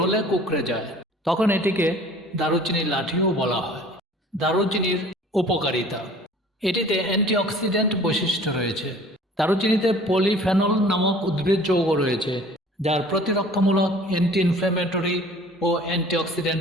কুঁকড়ে যায়, তখন এটিকে দারুচিনির লাঠিও বলা হয়। দারুচিনির উপকারিতা: এটিতে অ্যান্টিঅক্সিডেন্ট বৈশিষ্ট্য রয়েছে। দারুচিনিতে পলিফেনল নামক উদ্ভিদ যৌগ রয়েছে, যার প্রতিরক্ষামূলক, অ্যান্টি ইনফ্ল্যামেটরি ও অ্যান্টিঅক্সিডেন্ট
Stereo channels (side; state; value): both; normal; correlation 0.49